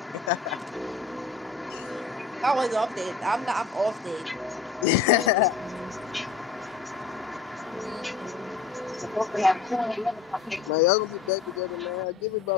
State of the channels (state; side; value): quieter; right; 4.9 dB